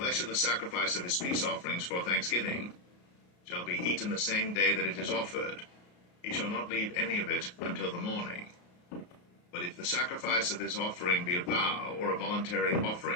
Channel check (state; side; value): late; right; 33 ms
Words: of the sacrifice of his peace offerings for thanksgiving shall be eaten the same day that it is offered. He shall not leave any of it until the morning. But if the sacrifice of his offering be a vow or a voluntary